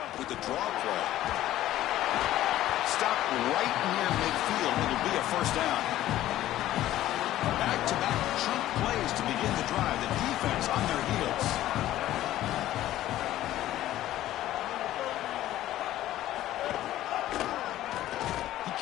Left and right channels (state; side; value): quieter; right; 13.9 dB